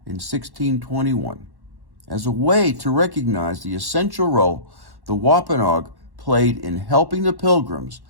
in 1621, as a way to recognize the essential role the Wampanoag played in helping the pilgrims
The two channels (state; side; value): late; left; 1.1 ms